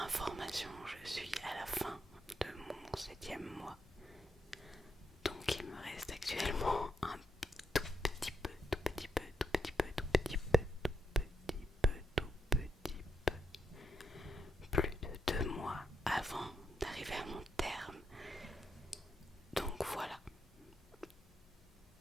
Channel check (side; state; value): both; normal; correlation 0.82